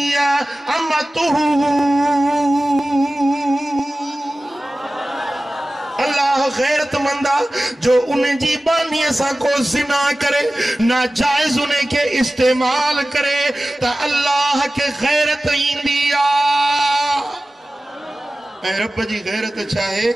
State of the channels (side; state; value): both; normal; correlation 0.96